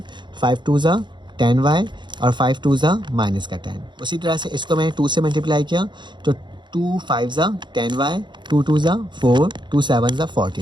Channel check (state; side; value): late; left; 0.22 ms